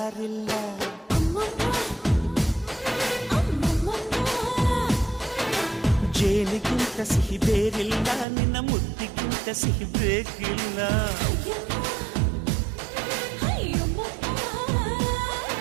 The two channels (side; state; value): left; drops out; at 8.2 s